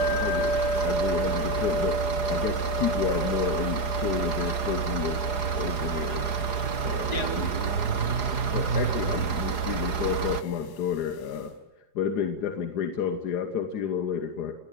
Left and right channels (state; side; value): late; right; 4.8 ms